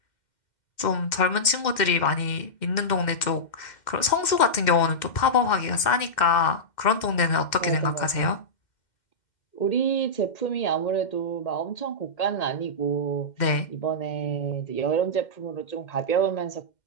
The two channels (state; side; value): late; right; 2.1 ms